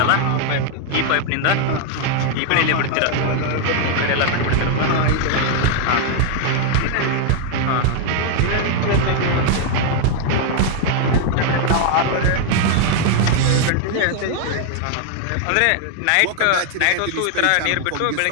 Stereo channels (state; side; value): different; both; correlation 0.00